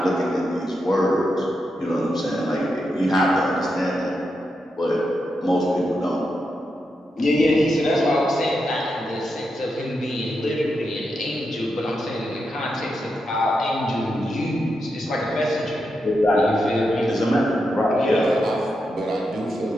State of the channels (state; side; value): normal; both; correlation 0.86